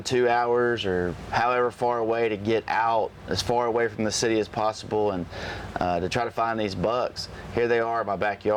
2 hours or however far away to get out as far away from the city as possible and to try to find these bucks. Here they are in my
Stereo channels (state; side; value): identical; both; correlation 1.00